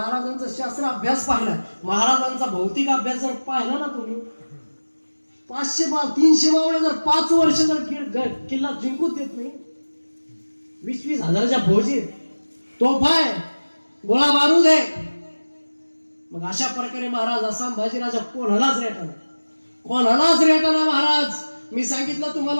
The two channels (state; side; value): inverted; both; correlation -1.00